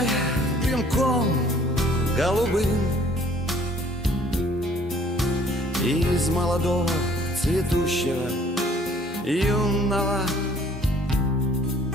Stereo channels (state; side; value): normal; both; correlation 0.58